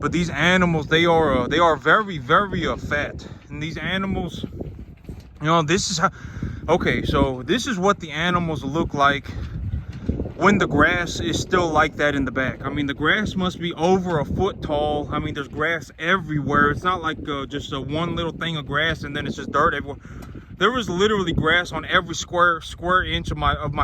these animals, they are very, very fat. And these animals, you know, this is how, okay, so this is what the animals look like when the grass is still like that in the back. I mean, the grass must be over a foot tall. I mean, there's grass everywhere. It's not like just one little thing of grass and then it's just dirt everywhere. There was literally grass on every square inch of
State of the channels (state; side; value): identical; both; correlation 1.00